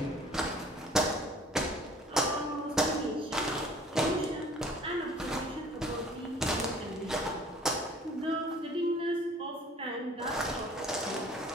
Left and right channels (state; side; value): normal; both; correlation 0.51